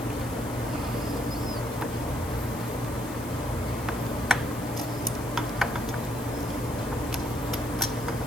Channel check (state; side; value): noise; left; hiss, 14 dB below the sound